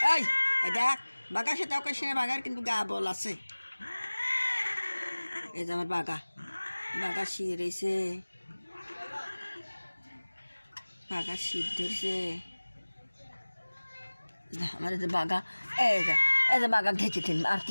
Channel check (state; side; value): inverted; both; correlation -1.00